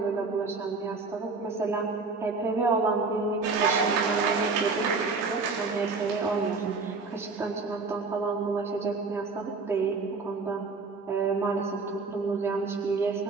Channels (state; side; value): quieter; left; 4.2 dB